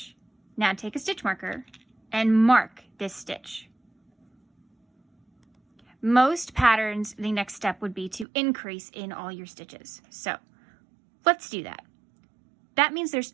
Now take a stitch marker and mark this stitch. Most patterns, the next step would be to increase in all your stitches. So let's do that. That means there's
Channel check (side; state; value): left; drops out; at 8.2 s